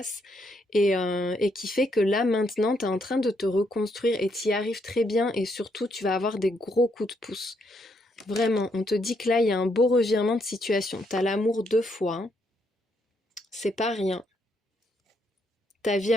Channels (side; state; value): both; normal; correlation 0.75